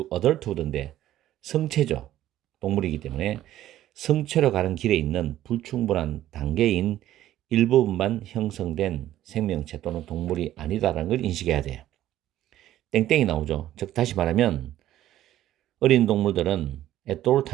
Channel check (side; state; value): left; quieter; 13.2 dB